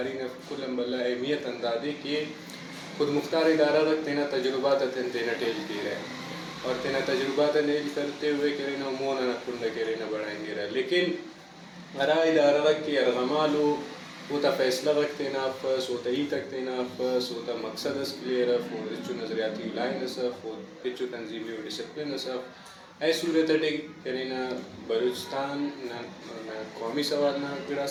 نے کل امبلا اہمیت اندازی کہ خود مختار ادارہ رکھ تینا تجربات تینا ٹیل کی رہے اور تینا تجربات نیل کرتے ہوئے کرینا مونا نہ کنڈا کرینا بڑھائیں گے رہے لیکن ارا ادارہ رکھ کے ارغمالو ہوتا فیصلہ رکھ تینا افس ہوتا ہی تک تینا افس ہوتا مقصد اس کلیئر اف ہو رچو نظریاتی لائن اسف ہو پچو تنظیمی و ڈسپلن اسف ای صورت ہے کرینا بلوچستان نہ قومی سوال نہ گڑا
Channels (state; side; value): identical; both; correlation 1.00